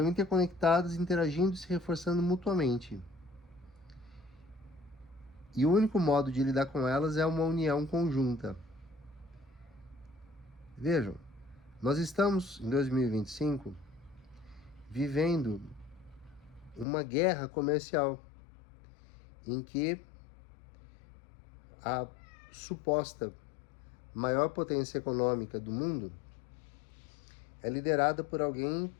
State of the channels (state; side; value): drops out; right; at 16.9 s